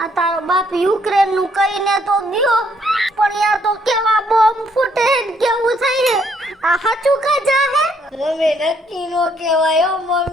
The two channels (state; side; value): normal; both; correlation 0.69